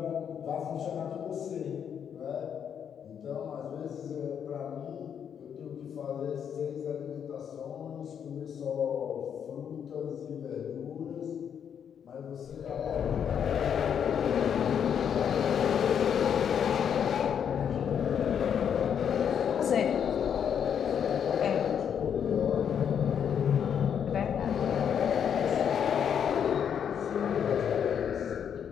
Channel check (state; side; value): quieter; right; 8.2 dB